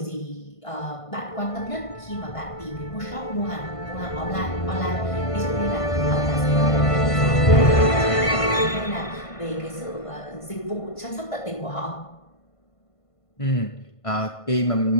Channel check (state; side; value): late; right; 1.5 ms